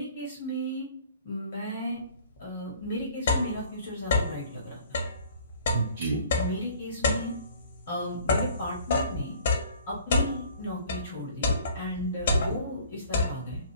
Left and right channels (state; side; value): inverted; both; correlation -0.52